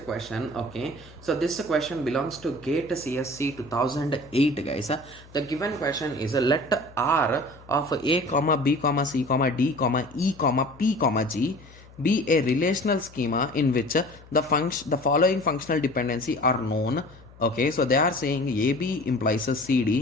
question. Okay, so this question belongs to GATE CSC 2008 guys. The given question is let R of A comma B comma C comma D comma E comma P comma G be a relational schema in which the following functional dependency are known. Okay, so they are saying AB implies a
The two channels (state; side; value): noise; left; hum, 23 dB below the sound